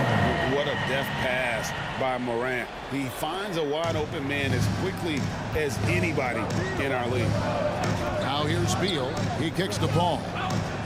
What a deft pass by Morant. He finds a wide-open man as quickly as anybody in our league. Now here's Beal. He kicks the ball.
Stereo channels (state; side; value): identical; both; correlation 1.00